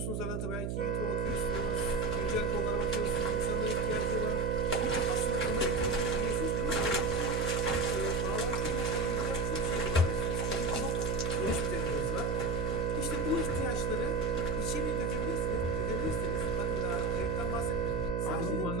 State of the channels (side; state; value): right; noise; hum, 2 dB below the sound